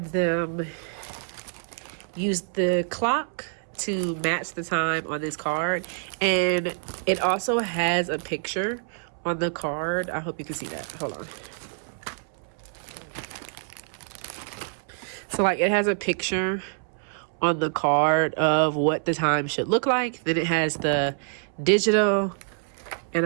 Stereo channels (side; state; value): left; silent; 61 dB below the other